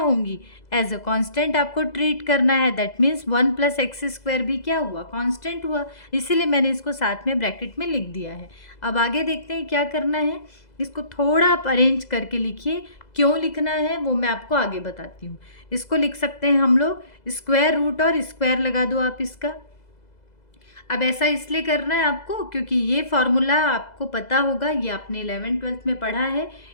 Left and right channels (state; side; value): late; right; 2.0 ms